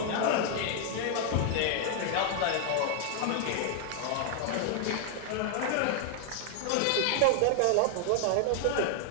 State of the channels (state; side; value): different; both; correlation 0.00